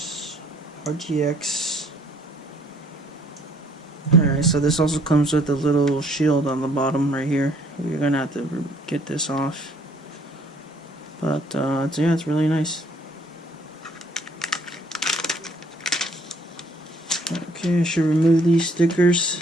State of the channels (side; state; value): both; normal; correlation 0.62